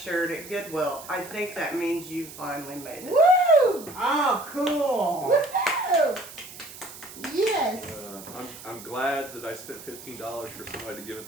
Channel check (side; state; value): right; noise; hiss, 15 dB below the sound